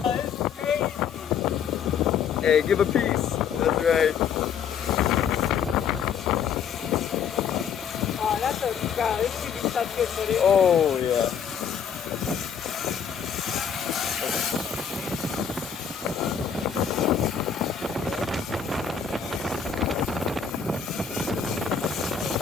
Hey, give a piece. That's right. Oh, that's a god. This should be such good footage. Oh yeah.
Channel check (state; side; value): quieter; right; 7.3 dB